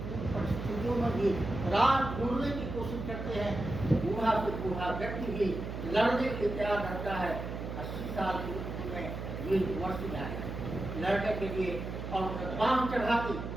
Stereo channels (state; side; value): noise; right; hum, 6 dB below the sound